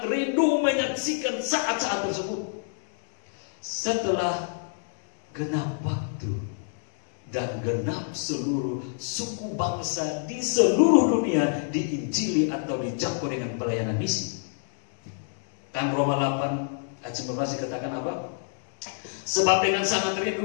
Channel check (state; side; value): silent; right; digital silence